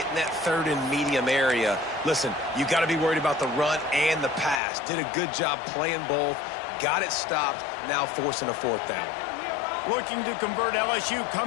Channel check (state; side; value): drops out; right; at 4.6 s